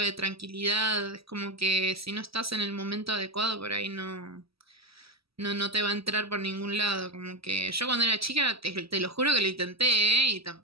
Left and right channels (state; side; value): late; left; 0.76 ms